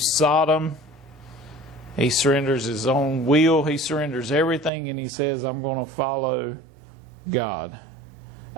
Sodom. He surrenders his own will. He surrenders everything, and he says, I'm going to follow God.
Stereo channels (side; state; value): left; drops out; at 4.7 s